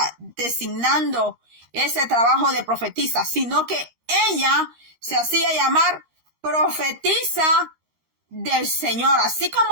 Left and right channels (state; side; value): late; left; 13 ms